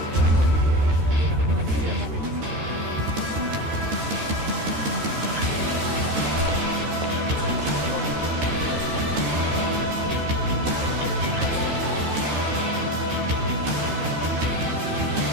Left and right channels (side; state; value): left; late; 13 ms